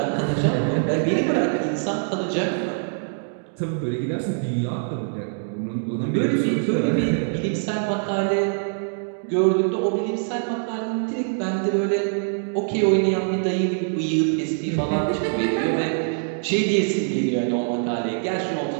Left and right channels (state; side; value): silent; left; digital silence